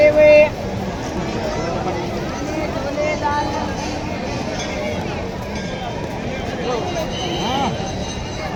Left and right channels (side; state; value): both; identical; correlation 1.00